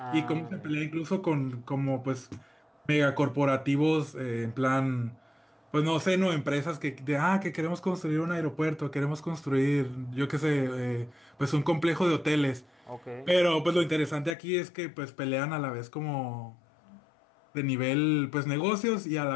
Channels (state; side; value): drops out; right; at 14.4 s